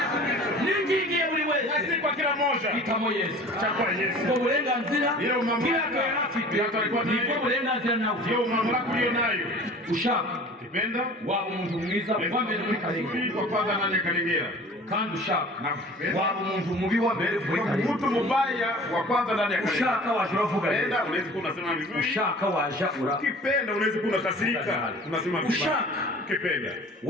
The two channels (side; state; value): both; normal; correlation 0.44